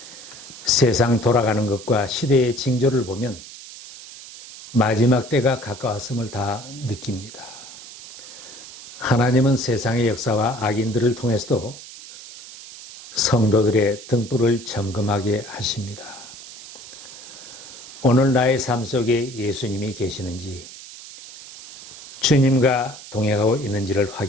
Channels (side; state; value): right; noise; hiss, 16 dB below the sound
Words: 세상 돌아가는 것과 시대의 징조를 보면 마지막 때가 가까웠음을 다 느낍니다. 하나님은 세상의 역사와 악인들을 통해서도 성도들의 등불을 점검하게 하십니다. 오늘 나의 삶 속에 예수님이 계시는지, 주님과 동행하고 있는지를